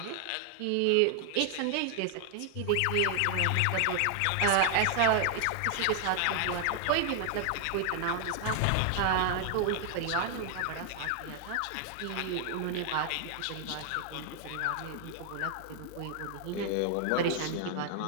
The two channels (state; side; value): different; both; correlation 0.00